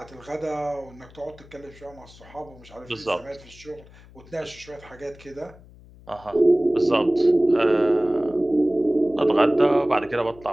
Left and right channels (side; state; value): left; noise; hum, 22 dB below the sound